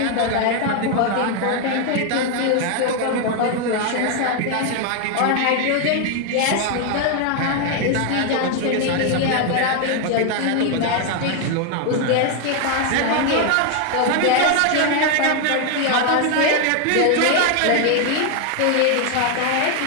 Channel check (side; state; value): both; different; correlation 0.01